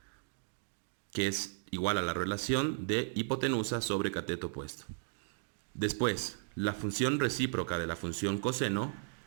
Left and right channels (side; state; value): left; silent; digital silence